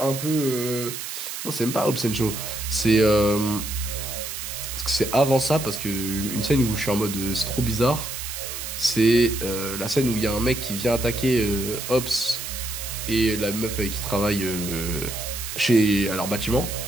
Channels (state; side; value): noise; right; hiss, 7 dB below the sound